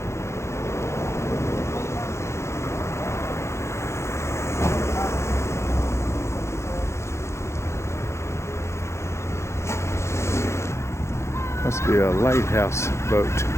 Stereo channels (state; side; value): late; right; 0.13 ms